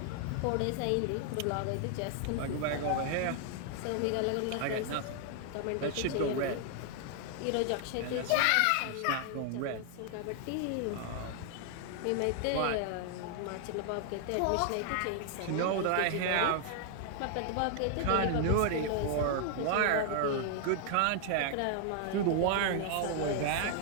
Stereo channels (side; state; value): both; different; correlation 0.00